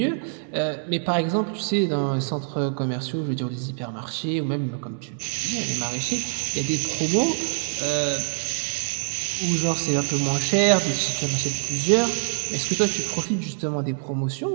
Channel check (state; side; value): silent; left; 62 dB below the other